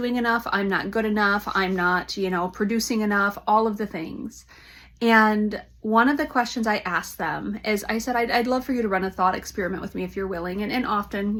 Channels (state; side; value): identical; both; correlation 1.00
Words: enough, I'm not good enough, I'm not, producing enough, all of the things. And one of the questions I asked them is, I said, I'd love for you to run a thought experiment with me if you're willing. And